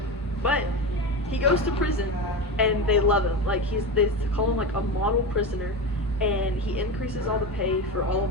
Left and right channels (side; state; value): both; normal; correlation 0.21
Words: But he goes to prison, and they love him. Like they call him like a model prisoner, and he increases all the pay for all